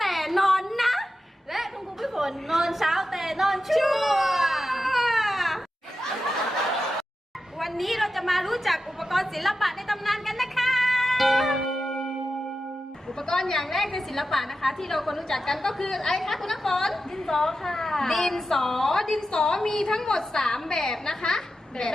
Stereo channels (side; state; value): both; normal; correlation 0.91